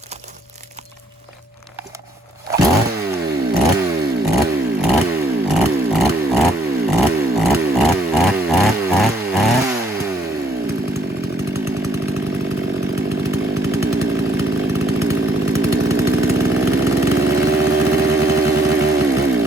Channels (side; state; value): both; normal; correlation 0.67